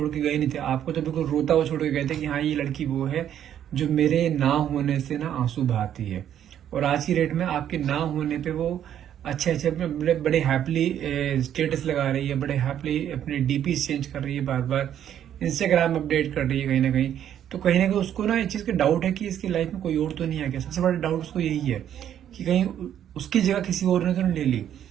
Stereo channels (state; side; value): quieter; left; 10.2 dB